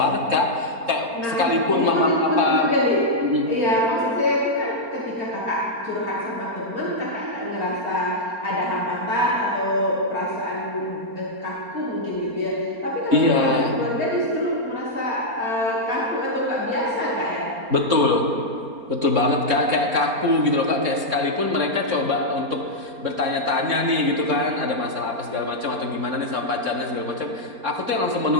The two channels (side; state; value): left; late; 4.3 ms